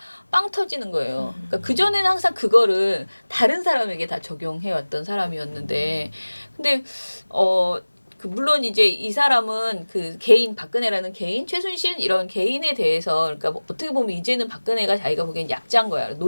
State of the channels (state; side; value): inverted; both; correlation -1.00